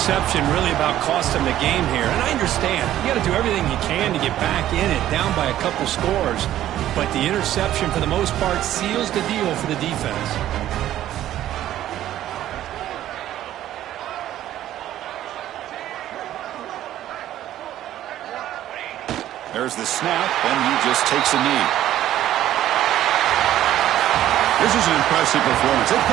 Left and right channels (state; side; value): quieter; left; 12.8 dB